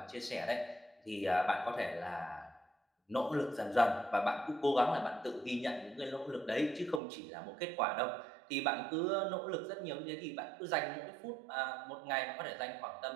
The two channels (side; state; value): left; drops out; at 7.0 s